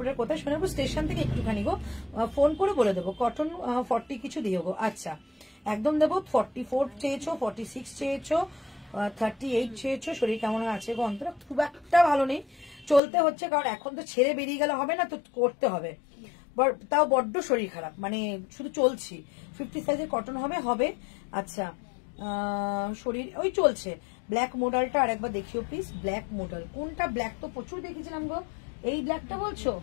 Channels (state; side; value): drops out; right; at 13.0 s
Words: কোথায়? সোনারপুর স্টেশন থেকে একটুখানি গো, ফোন করে বলে দেবো। কটন 40 কিছু দিও গো। আচ্ছা, একদম দেবো। 44 চেয়েছো, 46 চেয়েছো, 38 চেয়েছো। শরীর কেমন আছে গো? অন্তরা খুব একটা ভালো নেই, চলতে হচ্ছে, কারণ এখন তো ছেড়ে বেরিয়ে গেলে হবে না, তো করতে হবে। তাও বড্ড শরীর খারাপ, মানে শুধু চলছি। 50 সাইজের কটন হবে। আচ্ছা, শরীর ওই চলছে। ব্ল্যাক মডেলটা আর একবার দেখিও প্লিজ। ব্ল্যাক মডেল কোনটা? ব্ল্যাক তো প্রচুর দেখেছিলাম গো। এই ব্ল্যাকটা বলছো?